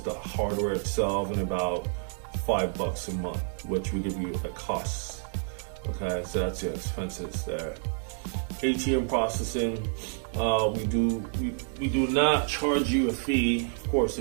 hardware itself, and about $5 a month, which we give you at cost. Okay, so that's your expenses there. ATM processing, we do not charge you a fee. Of course,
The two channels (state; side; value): silent; left; 56 dB below the other